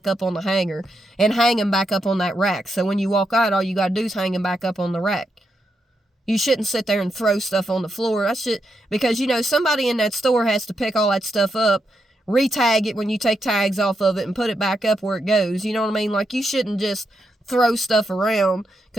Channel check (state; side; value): normal; both; correlation 0.83